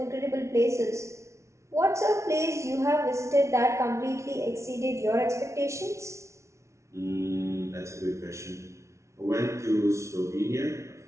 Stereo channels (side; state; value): left; late; 0.14 ms